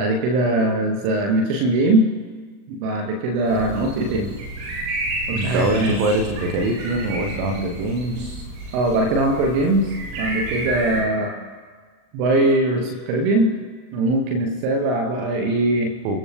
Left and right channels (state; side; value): late; left; 40 ms